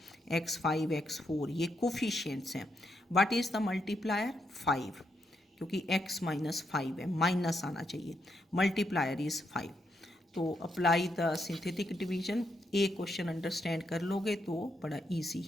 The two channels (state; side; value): normal; both; correlation 0.80